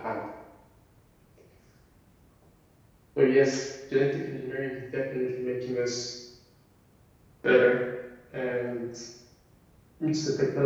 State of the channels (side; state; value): both; identical; correlation 1.00